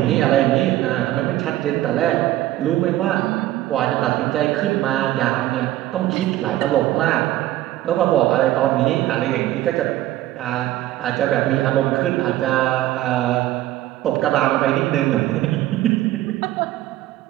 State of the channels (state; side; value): quieter; left; 14.8 dB